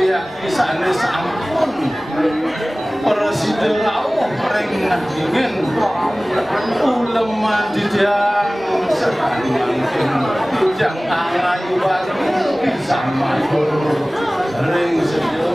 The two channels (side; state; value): both; normal; correlation 0.98